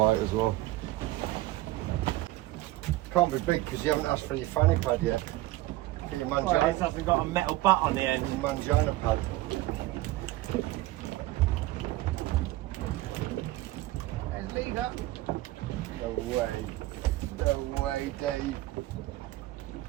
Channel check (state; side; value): quieter; left; 17.3 dB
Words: as well. Can't be big because you haven't asked for your fanny pad yet. For your mangina. Well, this hasn't got a metal butt on the end. Your mangina pad. There's leader. No way. No way, Dave.